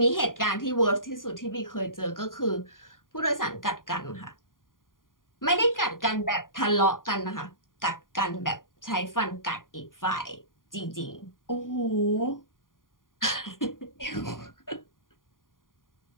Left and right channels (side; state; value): right; late; 0.90 ms